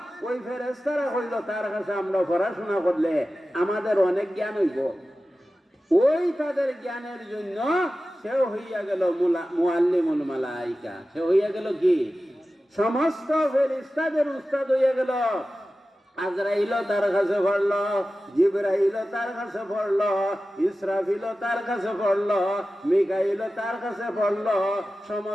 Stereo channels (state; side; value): normal; both; correlation 0.94